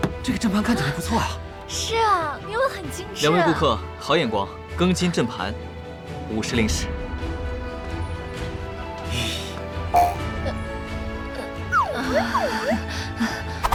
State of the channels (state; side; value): identical; both; correlation 1.00